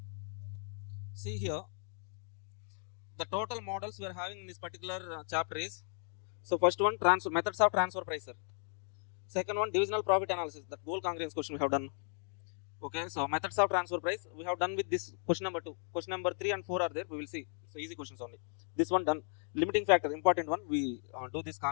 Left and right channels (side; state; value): right; silent; 54 dB below the other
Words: See, the total models we are having in this particular chapter is, so first one, transfer methods of transfer price, sir. Second one, divisional profit analysis, that goal congruence question we have done. Okay, so methods of transfer price we have done with this question number 2. Question number 3 and 4 are there, we will see. So easy questions only. This one done. Limiting factor, important one, we do this